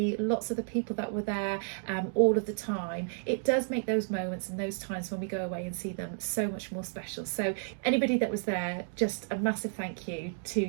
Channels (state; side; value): silent; left; digital silence